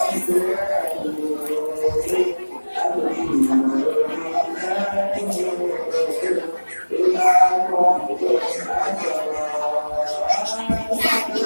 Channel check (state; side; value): inverted; both; correlation -1.00